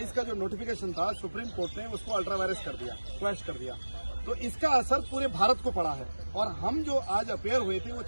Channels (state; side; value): inverted; both; correlation -1.00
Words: का जो नोटिफिकेशन था सुप्रीम कोर्ट ने उसको अल्ट्रा वायरस कर दिया, क्वैश कर दिया। तो इसका असर पूरे भारत को पड़ा है और हम जो आज अपेयर हुए थे वो